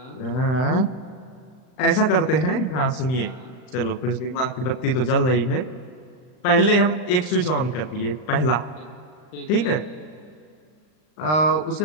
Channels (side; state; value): right; late; 39 ms